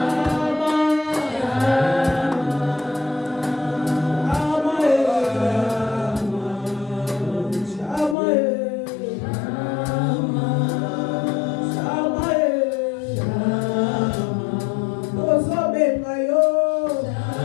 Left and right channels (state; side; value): drops out; right; at 8.2 s